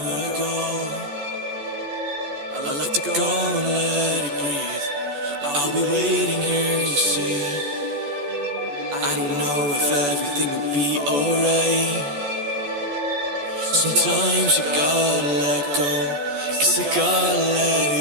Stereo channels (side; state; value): left; late; 14 ms